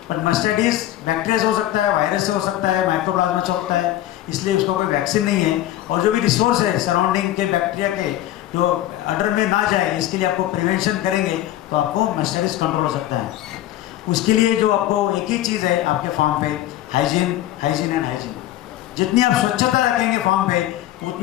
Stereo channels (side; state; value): right; quieter; 13.8 dB